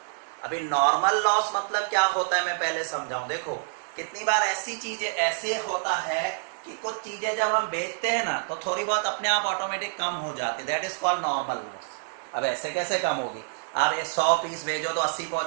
अभी नॉर्मल लॉस मतलब क्या होता है मैं पहले समझाऊं। देखो कितनी बार ऐसी चीजें ऐसे होता है कि कुछ चीजें जब हम बेचते हैं ना तो थोड़ी बहुत अपने आप ऑटोमेटिक कम हो जाती है, that is called normal loss. अब ऐसे कैसे कम होगी, आप ये 100 पीस भेजो तो 80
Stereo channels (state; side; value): silent; left; 58 dB below the other